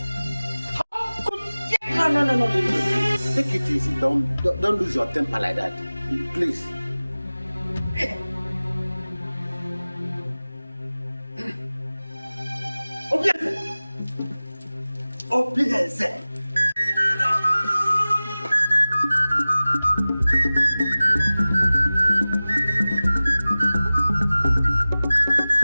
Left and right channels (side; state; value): both; inverted; correlation -0.98